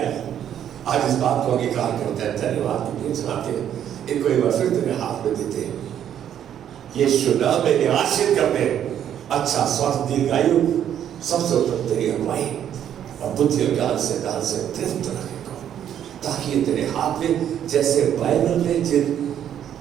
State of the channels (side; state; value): left; quieter; 9.9 dB